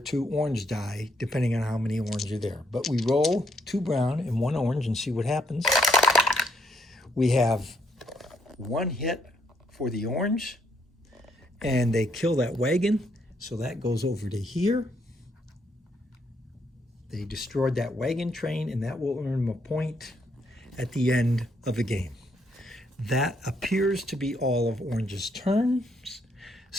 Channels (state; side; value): normal; both; correlation 0.72